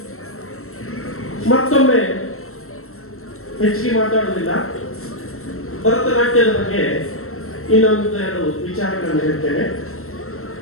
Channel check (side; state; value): right; late; 0.63 ms